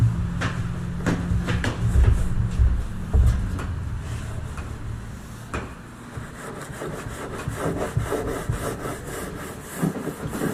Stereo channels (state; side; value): identical; both; correlation 1.00